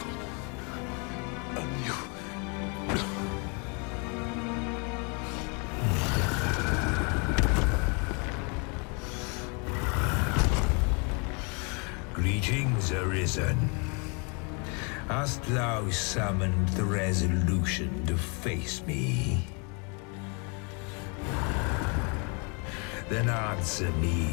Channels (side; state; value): right; quieter; 34.5 dB